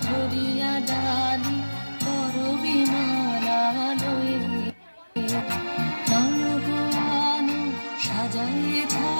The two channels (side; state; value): both; inverted; correlation -1.00